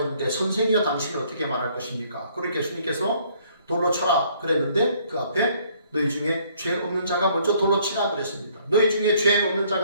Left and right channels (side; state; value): both; inverted; correlation -0.63